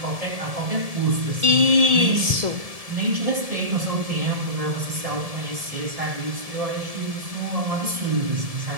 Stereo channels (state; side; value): late; left; 1.7 ms